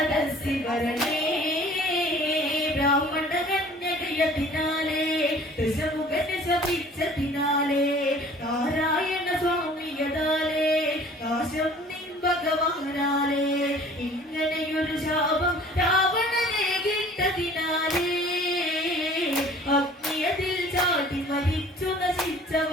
വരണേ ബ്രാഹ്മണകന്യകയതിനാലേ ദശമുഖനെ ശപിച്ചതിനാലേ നാരായണ സ്വാമിയതാലേ നാശം നിൻ ഭഗവാനാലേ ഇങ്ങനെയൊരു ശാപം രാവണനെ കിട്ടതിനാലേ അഗ്നിയതിൽ ചാടി മരിച്ചു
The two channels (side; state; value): both; normal; correlation 0.49